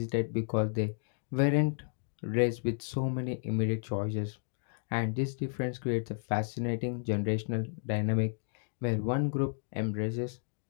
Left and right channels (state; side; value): silent; right; digital silence